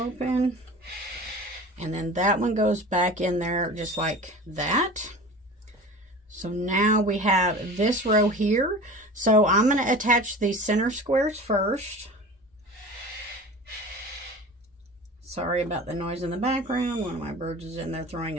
and then that one goes back in there just like that. So now we have this row here. So I'm going to attach these center squares first. Sorry about the noise in the background. One of my birds is in there throwing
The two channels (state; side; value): normal; both; correlation 0.37